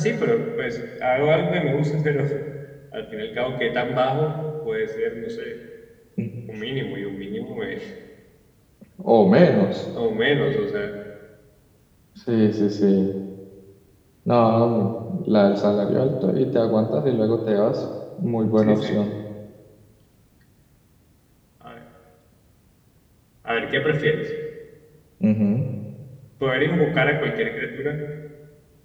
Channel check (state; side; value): identical; both; correlation 1.00